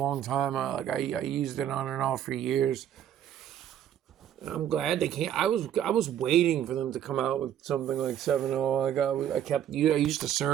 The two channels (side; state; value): left; quieter; 10.3 dB